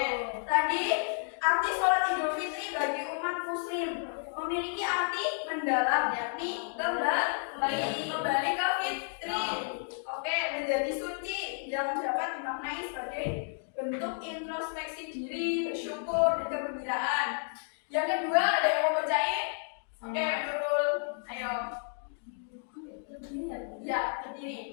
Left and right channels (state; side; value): silent; right; 57 dB below the other